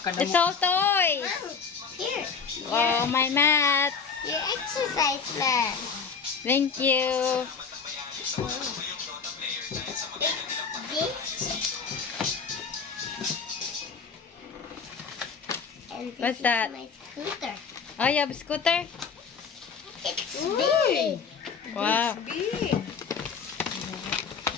all toys. Here. Wow, my mat. Your exercise mat. Thank you. And this What's is that? my scooter. Oh, you have a scooter? It's big. Wow. Big.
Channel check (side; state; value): right; quieter; 5.7 dB